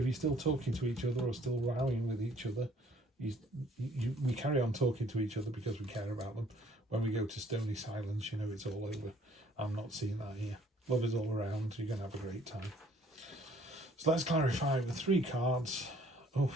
you're still talking to each other or still rowing with each other, we carry on talking to each other because we care about them. When we go to stony silence, it's all over. I'm not seeing that here. Lovers all around. You're going to have a great time. So let's clarify the 3 cards. Oh,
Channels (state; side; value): normal; both; correlation 0.60